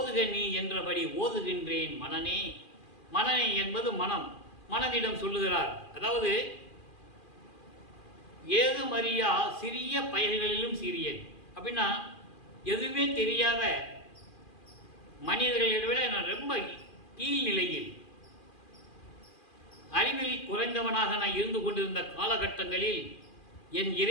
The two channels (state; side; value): late; right; 2.4 ms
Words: நீ என்றபடி ஓதுகின்றேன் மனனே. மனனே என்பது மனம், மனதிடம் சொல்லுகிறார். அதாவது ஏது மரியா சிறிய பயல்களிலும் சிறியேன் அப்படின்னா, எதுவுமே தெரியாத மனிதர்களை விட நான் ரொம்ப கீழ்நிலையில் அறிவில் குறைந்தவனாக நான் இருந்து கொண்டிருந்த காலகட்டங்களில் என்